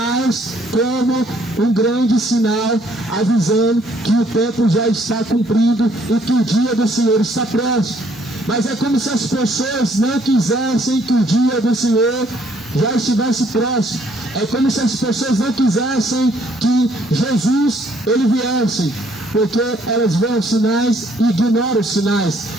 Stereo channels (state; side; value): normal; both; correlation 0.65